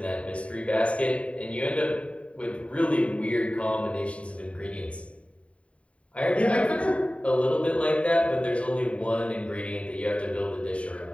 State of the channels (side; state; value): right; late; 0.063 ms